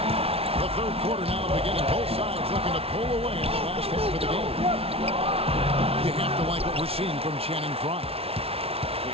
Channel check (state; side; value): late; left; 0.28 ms